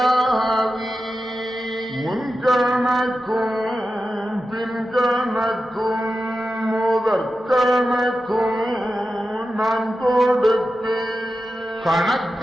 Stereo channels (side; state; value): both; normal; correlation 0.92